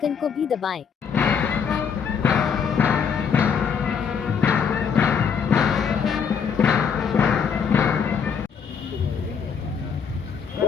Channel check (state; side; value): quieter; right; 6.7 dB